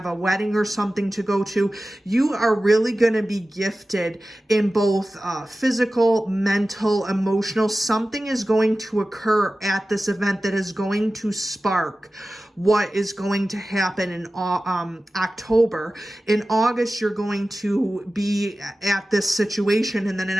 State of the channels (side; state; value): both; normal; correlation 0.95